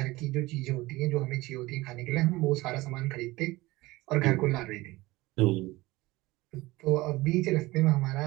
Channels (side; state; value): left; quieter; 20.0 dB